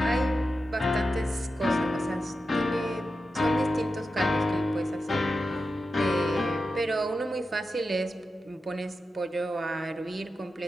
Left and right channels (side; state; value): both; normal; correlation 0.91